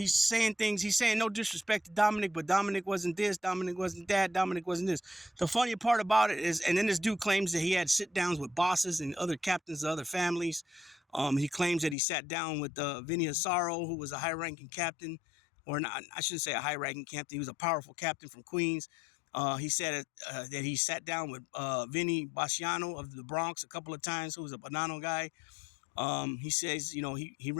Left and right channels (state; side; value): drops out; right; at 12.0 s